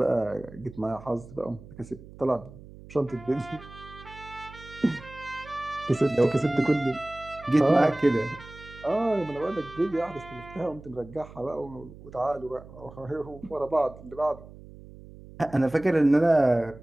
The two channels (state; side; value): noise; right; hum, 18 dB below the sound